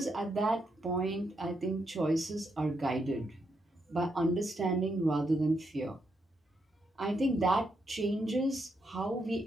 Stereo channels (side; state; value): both; normal; correlation 0.80